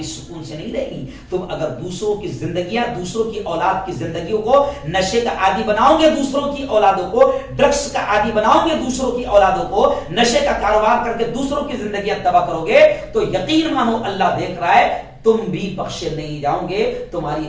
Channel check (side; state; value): both; identical; correlation 1.00